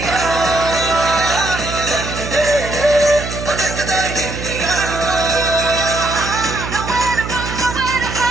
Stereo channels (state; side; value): noise; right; hum, 7 dB below the sound